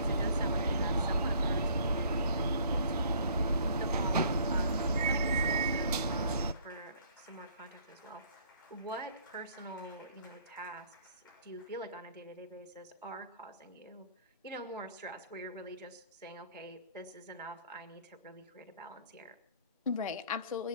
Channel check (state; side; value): inverted; both; correlation -0.58